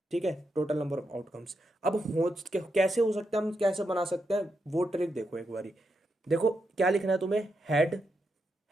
ठीक है, टोटल नंबर ऑफ आउटकम्स। अब हो कैसे हो सकता है, हम कैसे बना सकते हैं वो ट्रिक देखो एक बारी। देखो क्या लिखना है तुम्हें, हेड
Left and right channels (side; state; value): both; normal; correlation 0.84